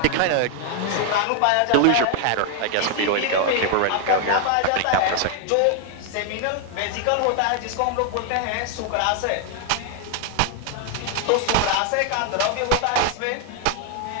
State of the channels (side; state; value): both; different; correlation 0.00